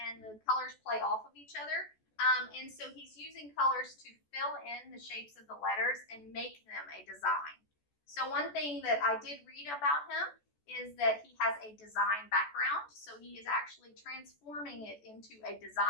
the colors play off of each other. And so he's using colors to fill in the shapes of the letters and make them a design. So one thing that I did read about him is that he has a design background. So he is actually transforming it into a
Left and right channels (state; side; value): late; right; 14 ms